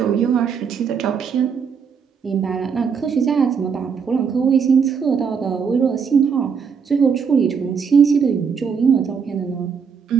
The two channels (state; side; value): quieter; left; 6.3 dB